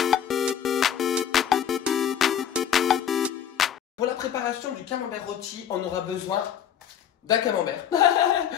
Pour la préparation du camembert rôti, on aura besoin d'un camembert.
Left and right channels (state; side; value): quieter; right; 9.1 dB